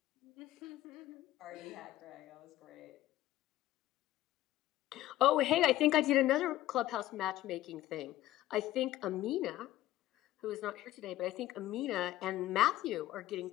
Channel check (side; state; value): right; quieter; 14.6 dB